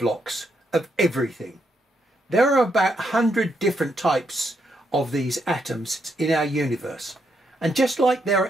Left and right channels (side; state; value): both; normal; correlation 0.78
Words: of everything. There are about 100 different types of these atoms in our universe. And just like there